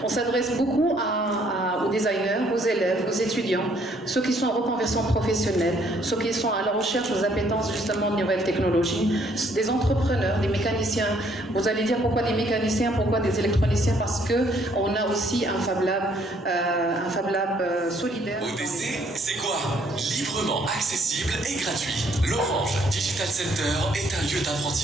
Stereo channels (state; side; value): normal; both; correlation 0.65